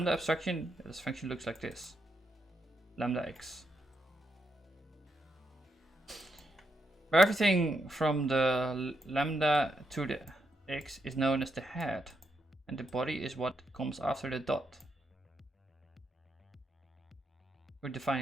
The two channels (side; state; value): both; normal; correlation 0.81